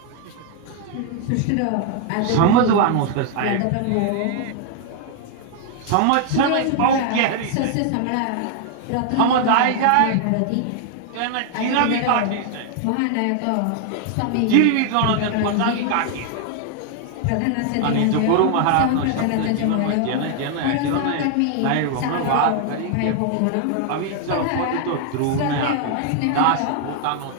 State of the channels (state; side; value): different; both; correlation 0.00